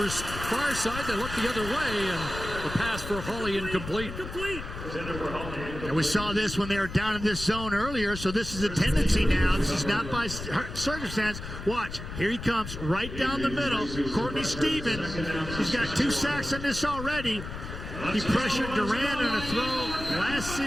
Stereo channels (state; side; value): noise; left; rumble, 9 dB below the sound